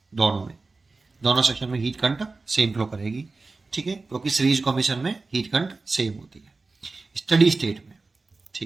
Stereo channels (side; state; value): left; quieter; 3.7 dB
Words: दोनों में, दोनों सेक्शन में हीट करंट सेम फ्लो करेगी। ठीक है, क्योंकि सीरीज कॉम्बिनेशन में हीट करंट सेम होती है स्टडी स्टेट में।